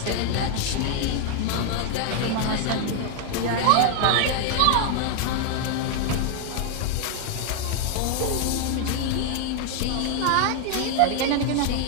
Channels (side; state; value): both; different; correlation 0.00